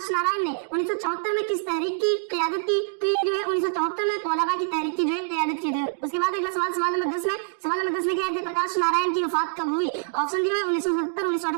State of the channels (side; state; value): left; silent; digital silence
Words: नारायण ने 1974 में किस तहरीक की क़यादत की? तो ये जो है 1974 में तौलबा की तहरीक की जो है क़यादत की थी। उसके बाद अगला सवाल सवाल नंबर 10 में। सवाल नंबर 10 में क्या है? जयप्रकाश नारायण की वफात कब हुई? ऑप्शन दिया है 1970,